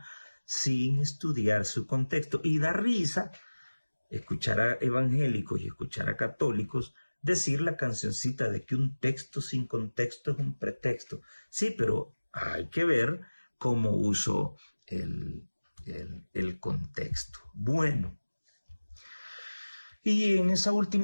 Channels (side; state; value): both; inverted; correlation -1.00